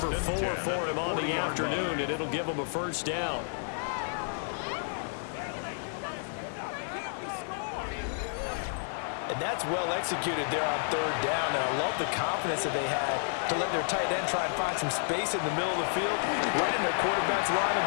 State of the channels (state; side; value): silent; right; digital silence